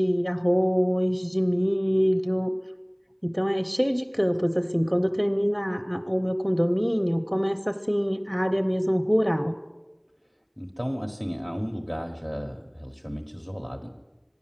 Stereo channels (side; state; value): both; identical; correlation 1.00